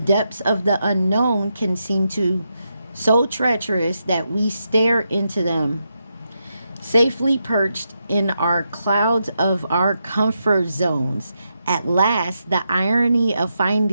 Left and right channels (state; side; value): inverted; both; correlation -0.84